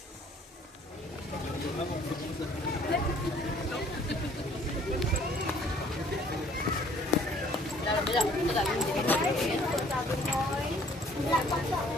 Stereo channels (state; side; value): normal; both; correlation 0.57